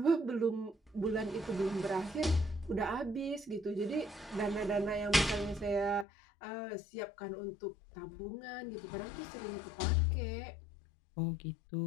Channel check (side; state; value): right; drops out; at 6.1 s